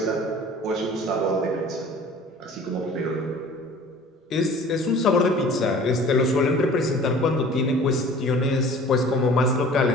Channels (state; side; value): normal; both; correlation 0.46